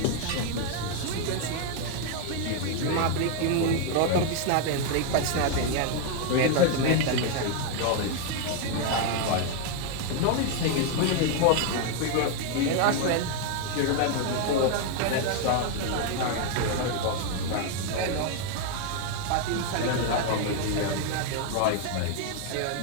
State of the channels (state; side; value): different; both; correlation 0.01